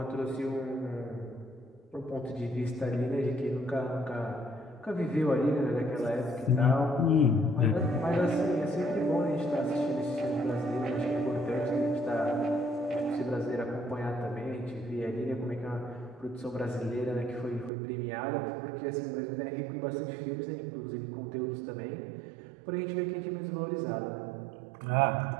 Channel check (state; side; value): drops out; left; at 17.7 s